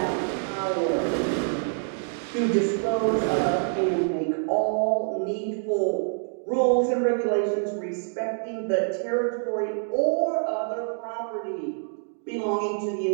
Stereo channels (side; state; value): left; silent; 61 dB below the other